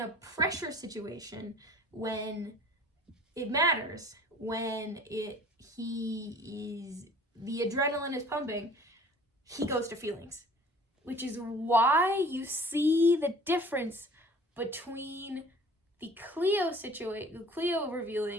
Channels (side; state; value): both; normal; correlation 0.48